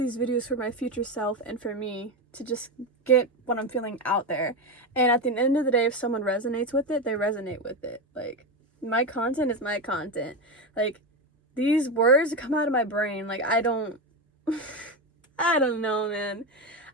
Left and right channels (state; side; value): normal; both; correlation 0.15